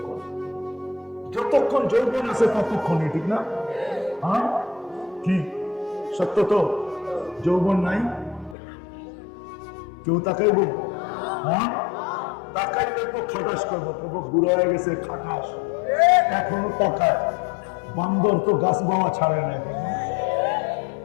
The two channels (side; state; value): right; drops out; at 8.6 s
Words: যতক্ষণ যৌবন আছে ততক্ষণই, ঠিক না? হ্যাঁ, কি সত্য তো? যৌবন নাই, কেউ তাকাইব? হ্যাঁ, তাকাইলে তো খাটাস করবো, তবু বুড়ো হয়ে গেছে খাটাস, এখনো তাকায়। বান্দর তো গাছ বাওয়া ছাড়ে না এখনো।